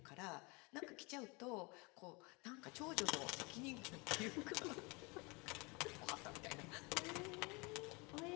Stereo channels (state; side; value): quieter; right; 28.1 dB